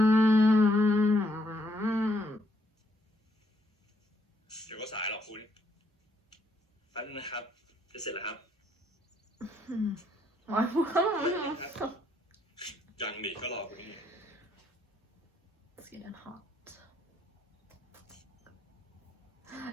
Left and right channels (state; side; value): normal; both; correlation 0.72